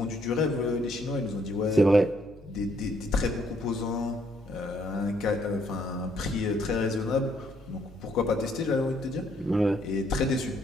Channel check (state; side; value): normal; both; correlation 0.69